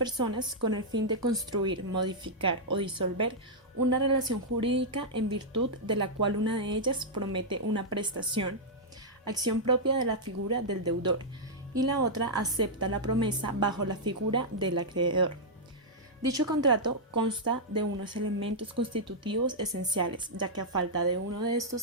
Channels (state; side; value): normal; both; correlation -0.07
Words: con el fin de construir, modificar o disolver una relación jurídica en virtud de la cual una de ellas promete una prestación, acción propia de la figura del deudor, y la otra acepta la promesa bajo la figura del acreedor. Dicho contrato consta de unos elementos constitutivos esenciales, ya que a falta de uno de